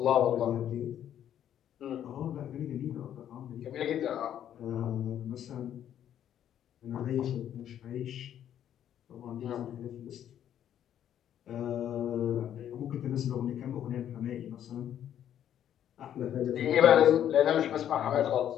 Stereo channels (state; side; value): quieter; right; 10.3 dB